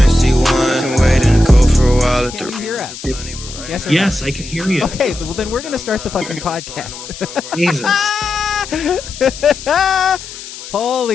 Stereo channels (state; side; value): noise; left; hiss, 13 dB below the sound